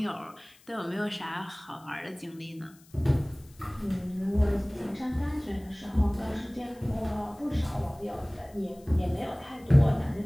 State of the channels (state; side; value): noise; left; hiss, 27 dB below the sound